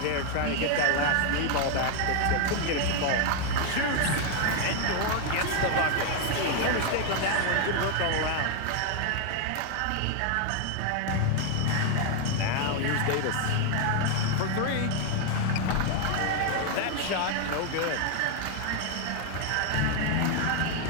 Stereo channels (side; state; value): both; different; correlation 0.01